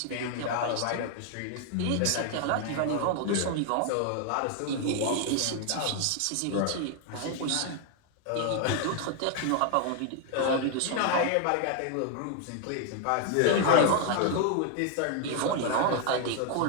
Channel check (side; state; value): both; different; correlation 0.00